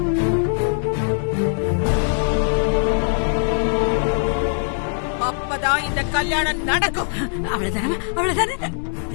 அப்பதான் இந்த கல்யாணம் நடக்கும். அவ்வளவுதானே, அவ்வளவுதானே.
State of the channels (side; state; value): right; silent; 65 dB below the other